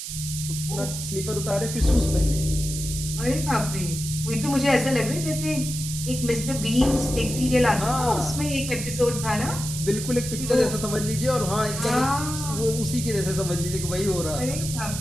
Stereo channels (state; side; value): noise; right; hiss, 7 dB below the sound